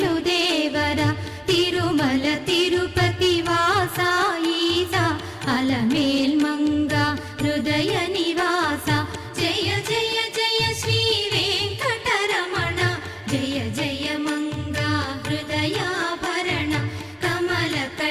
దేవర తిరుమల తిరుపతి వాసా ఈసా అలమేల్ మంగ హృదయ నివాస జయ జయ జయ శ్రీ వెంకటరమణ జయ జయ మంగ హృదయాభరణ కమల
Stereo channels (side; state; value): both; identical; correlation 1.00